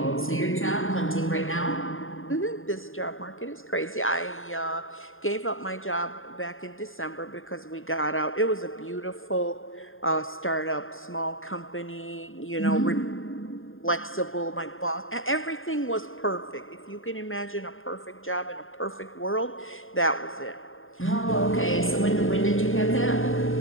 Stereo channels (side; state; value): right; late; 0.59 ms